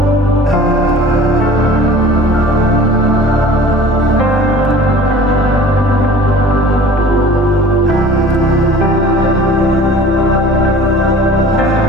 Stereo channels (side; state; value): both; normal; correlation 0.45